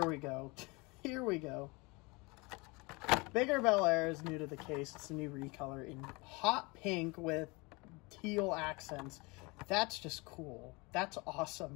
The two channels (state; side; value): quieter; right; 26.7 dB